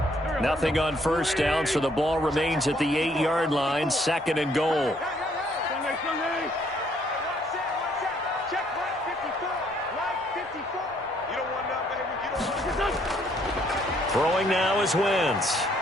Nothing on 1st down, so the ball remains at the 8-yard line, 2nd and goal. Throwing now is Wentz.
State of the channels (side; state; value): both; normal; correlation 0.66